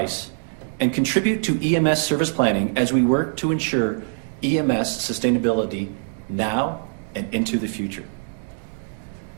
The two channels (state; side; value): silent; left; 63 dB below the other